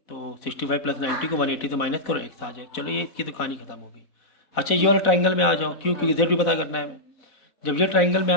तो 65 प्लस 90 को 180 से माइनस करो एक्स आ जाए। चलो ये इसकी तो कहानी खत्म हो गई। अच्छा ये वाला ट्राइंगल में आ जाओ, क्यों? क्योंकि जेड भी पता करना है हमें। जब ये ट्राइंगल में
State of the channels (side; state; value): right; late; 4.0 ms